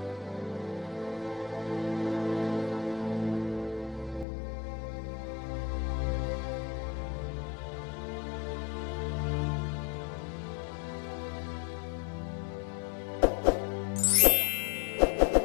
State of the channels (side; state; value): right; drops out; at 4.2 s